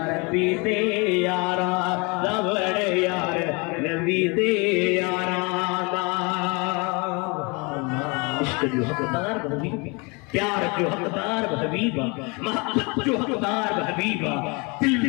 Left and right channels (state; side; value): quieter; right; 29.4 dB